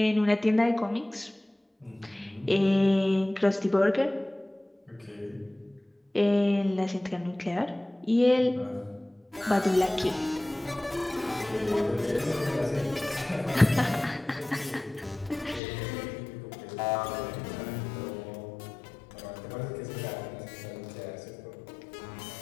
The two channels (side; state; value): right; drops out; at 15.6 s